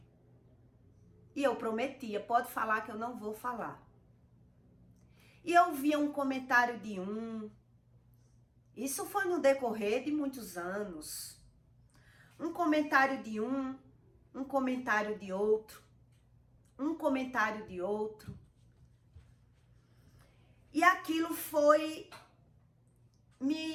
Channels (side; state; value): both; identical; correlation 1.00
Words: E eu prometia, pode falar que eu não vou falar. E eu via um comentário de isso foi no decorrer de muitos anos. Um comentário de um comentário de outro, um comentário de outro. E aquilo foi